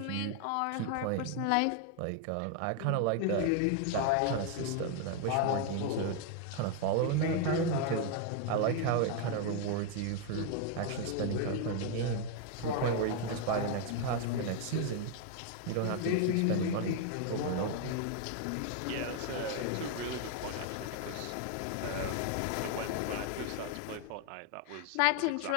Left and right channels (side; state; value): both; different; correlation 0.00